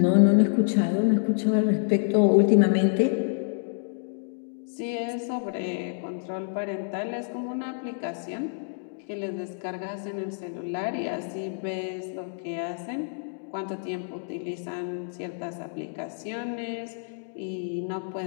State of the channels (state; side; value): silent; right; digital silence